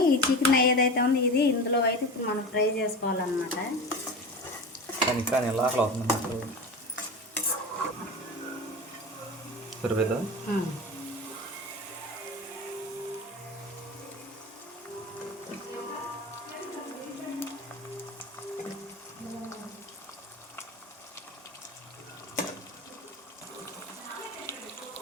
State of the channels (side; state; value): both; normal; correlation 0.29